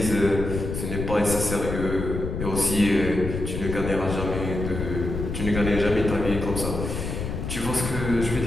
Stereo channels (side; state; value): left; noise; rumble, 4 dB below the sound